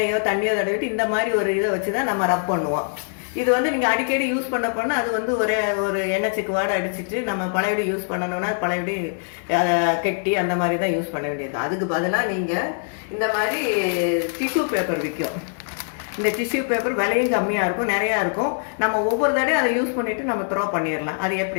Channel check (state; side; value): silent; right; digital silence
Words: தண்ணியோ தடவிட்டு இந்த மாதிரி ஒரு இதை வச்சு தான் நம்ம ரப் பண்ணுவோம். இது நீங்கள் அடிக்கடி யூஸ் பண்ண அது ஒரு எண்ணெய் சிக்குவாடை அடிச்சுட்டு நம்ம பழையபடி யூஸ் பண்ணணும்னா பழையபடி கெட்டி அந்த மாதிரி தான் யூஸ் பண்ண வேண்டியது. அதுக்கு பதிலாக நீங்கள் இந்த மாதிரி டிஷ்யூ பேப்பர் விற்கும். இந்த டிஷ்யூ பேப்பர் விலையும் கம்மியாக இருக்கும், நிறையா இருக்கும். நம்ம ஒவ்வொரு தடையும் அதை யூஸ் பண்ணிவிட்டு நம்ம த்ரோ பண்ணிடலாம். அது